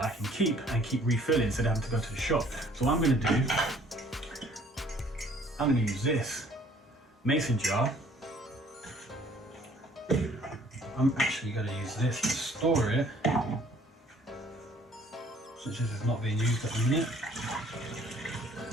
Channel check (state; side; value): normal; both; correlation 0.57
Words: I can keep refilling instead of having to go to the shop. So what I'm going to do, I'm going to use this mason jar. I'm actually going to use this to store it, since this is not being used at the minute.